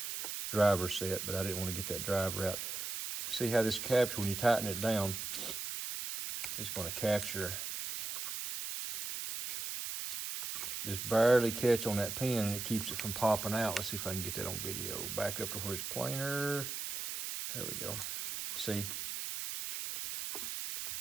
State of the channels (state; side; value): noise; right; hiss, 4 dB below the sound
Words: driver set, but I didn't want to get that driver out. See how this capture, when you tighten it down, it's going to capture, just barely catch on that pin, and it keeps it from popping out. Let's see if I can get that on video. Back up to where it's planar. There we go. See?